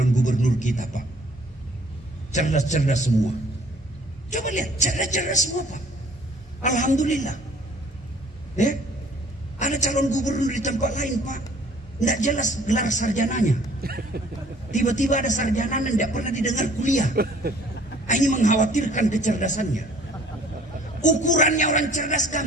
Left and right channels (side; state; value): both; normal; correlation 0.55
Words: gubernur kita, Pak. Cerdas-cerdas semua. Coba lihat, cerdas-cerdas semua, Pak. Alhamdulillah. Ada calon gubernur di tempat lain, Pak, tidak jelas gelar sarjananya. Tiba-tiba ada sarjana dan tidak pernah didengar kuliah. Ini mengkhawatirkan kecerdasannya. Ukurannya orang cerdas